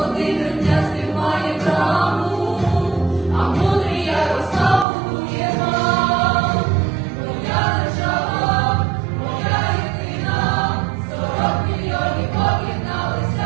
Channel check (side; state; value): left; drops out; at 4.9 s